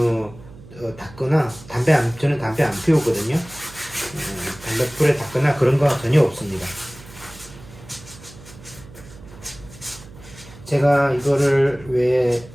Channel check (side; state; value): right; noise; hum, 19 dB below the sound